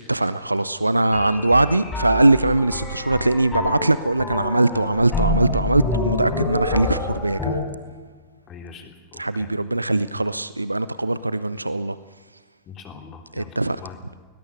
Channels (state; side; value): inverted; both; correlation -0.79